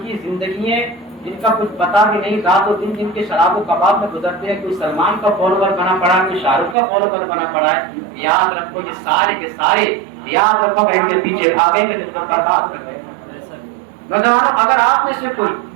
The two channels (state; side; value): drops out; left; at 6.8 s